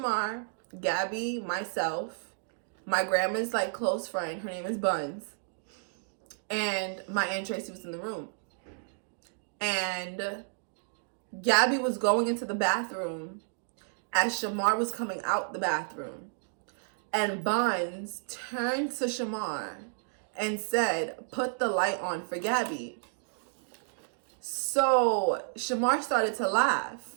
Gabby, myself, my grandma's like close friend. Her name is Buns. And my Aunt Tracy was in the room. And Gabby was going into the bathroom as Shamar was coming out the bathroom. And Buns turned to Shamar and said, "Put the light on for Gabby." So Shamar started to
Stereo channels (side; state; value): left; silent; digital silence